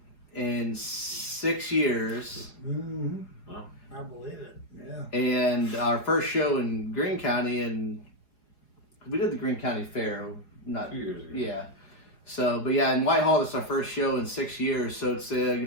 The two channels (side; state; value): right; late; 4.8 ms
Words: in 6 years. Mm-hmm. Wow. I believe it. Yeah. And our first show in Greene County, and we did the Greene County Fair, not 2 years ago. Yeah. So, but yeah, in Whitehall, this is our first show in 6 years, so it's